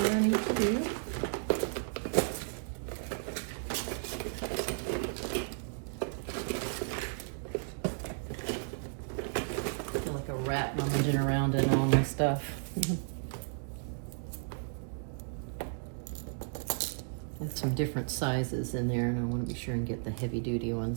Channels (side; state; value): left; silent; digital silence